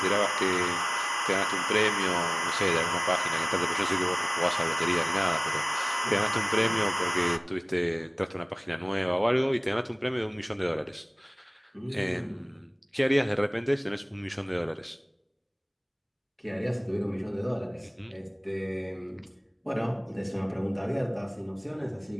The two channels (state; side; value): identical; both; correlation 1.00